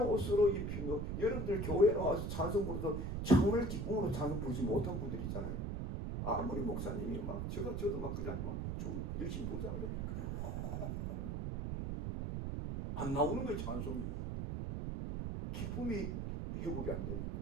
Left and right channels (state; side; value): noise; right; rumble, 2 dB below the sound